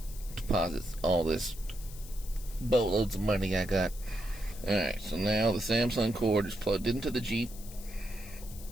deposit all this boatloads of money I got. Alright, so now the Samsung cord is plugged into the Jeep.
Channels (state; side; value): noise; left; hiss, 17 dB below the sound